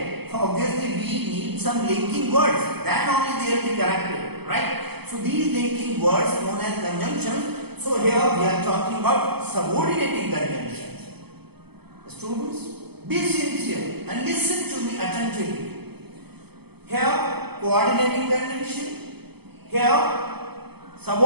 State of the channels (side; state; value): left; late; 0.97 ms